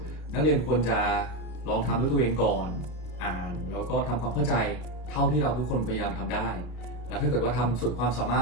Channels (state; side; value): late; right; 33 ms